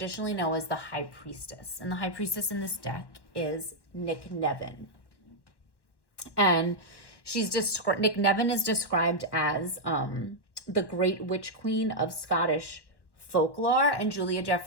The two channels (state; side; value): late; right; 1.1 ms